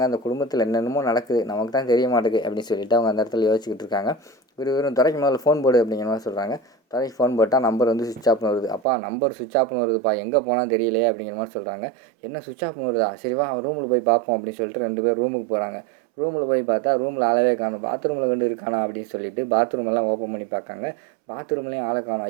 அந்த குடும்பத்தில் என்னென்னமோ நடக்குது, நமக்கு தான் தெரிய மாட்டேங்குது அப்படின்னு சொல்லிட்டு அவங்க அந்த இடத்துல யோசிச்சுக்கிட்டு இருக்காங்க. வெறும் துறைக்கு முதல்ல ஃபோன் போடு அப்படிங்கிற மாதிரி சொல்கிறாங்க. துறைக்கு ஃபோன் போட்டால் நம்பர் வந்து சுவிட்ச் ஆஃப்னு வருது. அப்பா நம்பர் சுவிட்ச் ஆஃப்னு வருதுப்பா, எங்கே போனால் தெரியலையே அப்படிங்கிற மாதிரி சொல்கிறாங்க. என்ன சுவிட்ச் ஆஃப்னு வருதா, சரி வா ரூமில் போய் பார்ப்போம் அப்படின்னு சொல்லிட்டு 2 பேர் ரூமுக்கு போகிறாங்க. ரூமில் போய் பார்த்தா ரூமில் ஆளவே காணும். பாத்ரூமில் வந்து இருக்கானா அப்படின்னு சொல்லிட்டு பாத்ரூம் எல்லாம் ஓப்பன் பண்ணி பார்க்காங்க. பாத்ரூம்லேயும் ஆளை காணும்.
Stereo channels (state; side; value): drops out; left; at 8.8 s